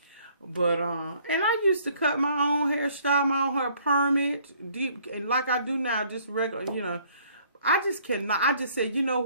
But and I used to cut my own hair, style my own hair, perm it, deep, and like I do now, just regular, you know. I just cannot. I just said, you know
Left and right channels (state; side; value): inverted; both; correlation -0.61